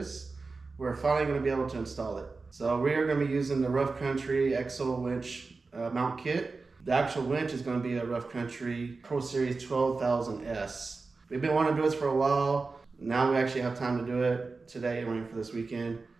we're finally going to be able to install it. So we are going to be using the Rough Country EXO Winch mount kit. The actual winch is going to be a Rough Country PRO Series 12,000S. We've been wanting to do this for a while. Now we actually have time to do it today and waiting for this weekend.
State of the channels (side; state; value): left; quieter; 4.0 dB